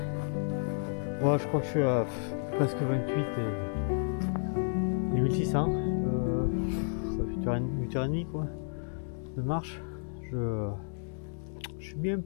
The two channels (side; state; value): right; silent; digital silence